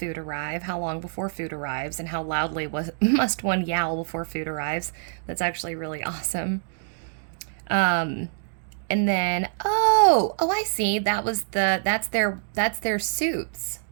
arrive? How long before food arrives? And how loudly must one yowl before food arrives? That's actually really awesome. And then, I see. That's their suits.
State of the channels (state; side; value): silent; left; digital silence